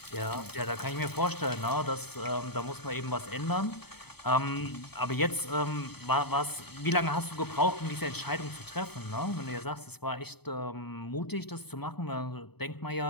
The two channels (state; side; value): late; right; 0.97 ms